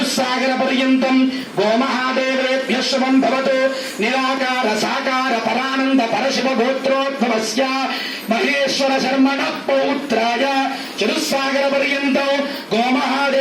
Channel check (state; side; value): identical; both; correlation 1.00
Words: पर्यन्तं गोमहादेवेभ्यः शुभं भवतु। निराकार साकार परानंद परशिव गोत्रोद्भवस्य महेश्वर शर्मणः पौत्राय चतुस्सागर पर्यन्तं